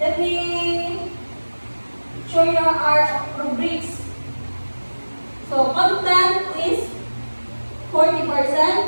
me show you our rubrics. So content is 40%,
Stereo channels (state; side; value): inverted; both; correlation -1.00